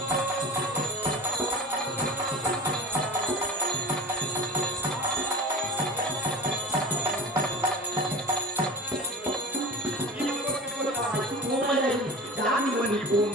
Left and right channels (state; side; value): normal; both; correlation 0.34